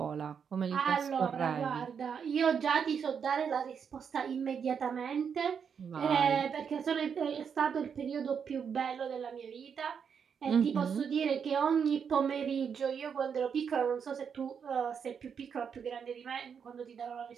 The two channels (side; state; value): left; quieter; 6.9 dB